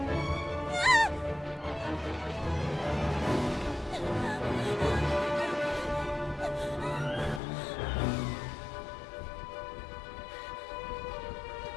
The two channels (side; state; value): right; drops out; at 7.4 s